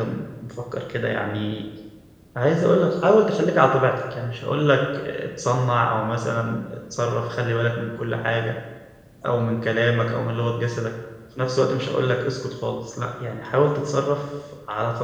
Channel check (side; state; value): both; identical; correlation 1.00